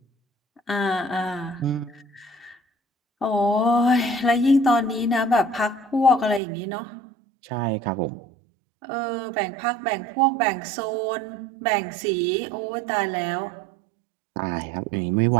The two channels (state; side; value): drops out; left; at 6.4 s